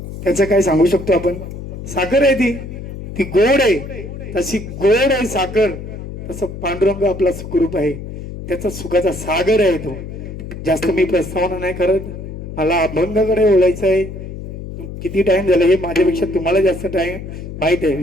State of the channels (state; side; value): noise; left; hum, 10 dB below the sound